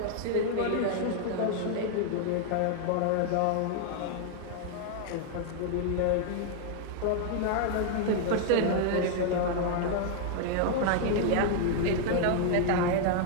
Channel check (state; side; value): different; both; correlation 0.00